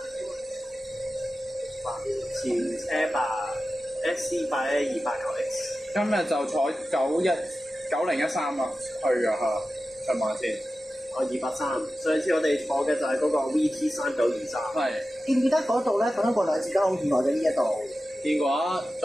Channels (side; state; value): both; normal; correlation 0.94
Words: 前車吧 SC8128X。今日就坐9013啊，去啊嚇，上馬先。283。上次我哋坐嘅就係嗰個 VT3923。係。記唔記得嗰度咧發生過2次交通意外嘅呢一度？見過啊，